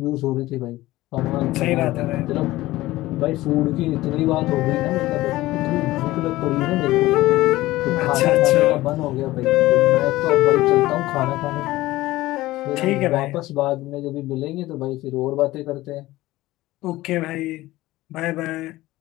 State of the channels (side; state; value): right; quieter; 17.5 dB